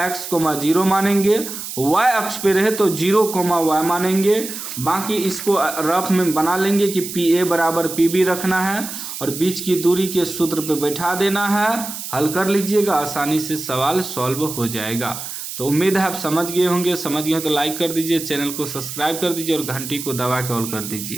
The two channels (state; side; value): noise; right; hiss, 8 dB below the sound